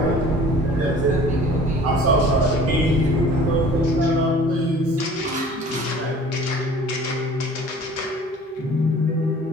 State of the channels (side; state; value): both; normal; correlation 0.47